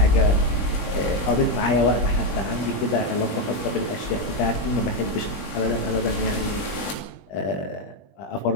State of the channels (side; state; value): right; late; 20 ms